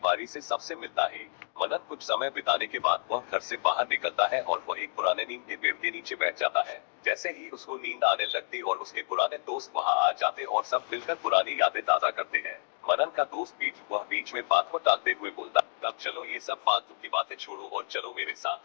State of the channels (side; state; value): right; silent; digital silence